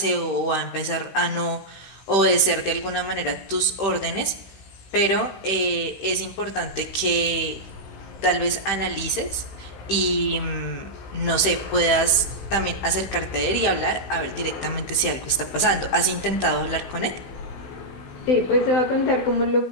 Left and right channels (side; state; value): right; late; 15 ms